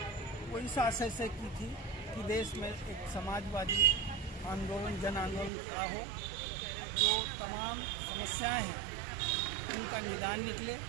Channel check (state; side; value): drops out; left; at 5.5 s